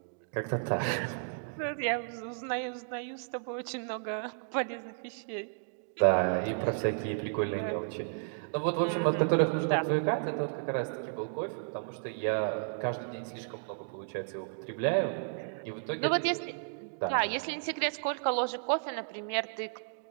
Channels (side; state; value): left; silent; digital silence